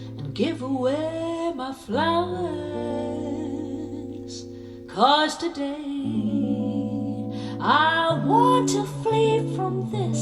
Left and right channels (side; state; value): both; identical; correlation 1.00